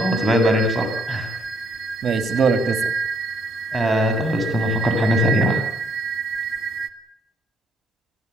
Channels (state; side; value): normal; both; correlation 0.69